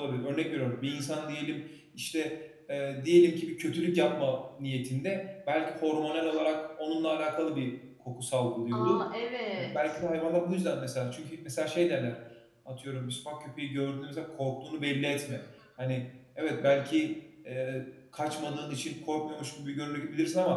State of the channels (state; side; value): identical; both; correlation 1.00